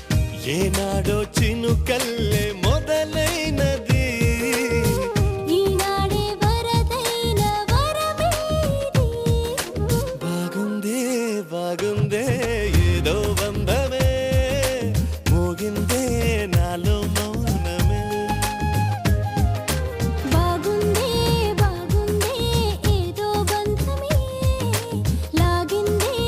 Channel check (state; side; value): identical; both; correlation 1.00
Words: ఏనాడో చినుకల్లే మొదలైనది ఈనాడే వరదైన వరమేది బాగుందే బాగుందే ఏదో బంధమే మోగిందే నాలో మౌన